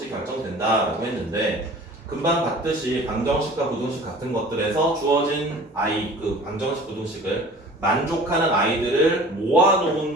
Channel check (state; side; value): normal; both; correlation 0.45